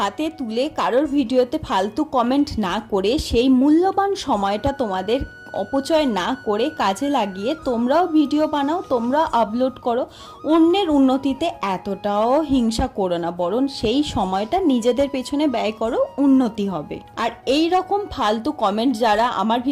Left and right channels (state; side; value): identical; both; correlation 1.00